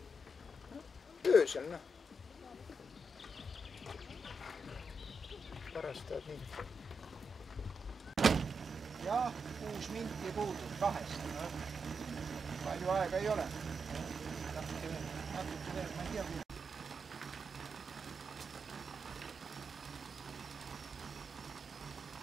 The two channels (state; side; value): normal; both; correlation 0.84